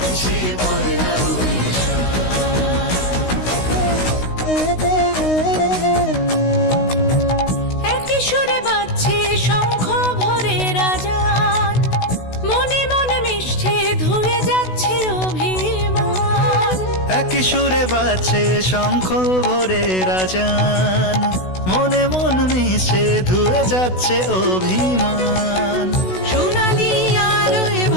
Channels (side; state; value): right; late; 16 ms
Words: পয়লা বৈশাখ। একই সুরে বাজছে শঙ্খ ভরে রাজান, মনে মনে মিশছে ধুয়ে যাচ্ছে অভিমান। একই সুরে বাজছে শঙ্খ ভরে রাজান, মনে মন মিশে ধুয়ে যাচ্ছে অভিমান। সোনালি আলোয়